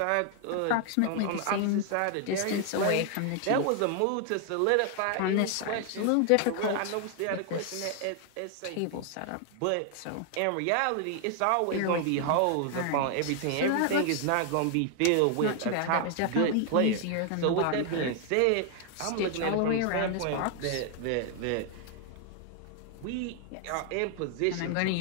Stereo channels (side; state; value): both; different; correlation 0.00